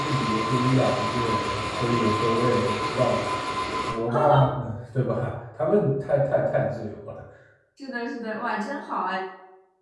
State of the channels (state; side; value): identical; both; correlation 1.00